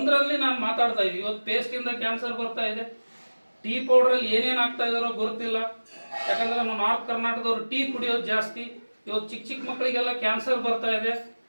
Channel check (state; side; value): inverted; both; correlation -1.00